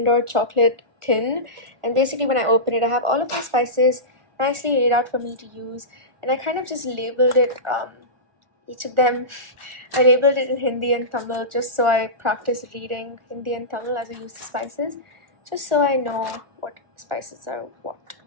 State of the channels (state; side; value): late; left; 1.4 ms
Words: chocolate tin. And basically when I open it, I have all of my spices nicely laid out for me to use. And I kind of just labeled it, each of them. I labeled it in Hindi and Tamil just so I practice reading Hindi and Tamil as I use the spices. Just so I know what spices are what.